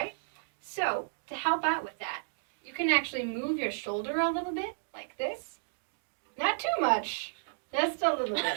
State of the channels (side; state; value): left; silent; digital silence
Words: So to help out with that, you can actually move your shoulder a little bit like this. Not too much. Just a little bit.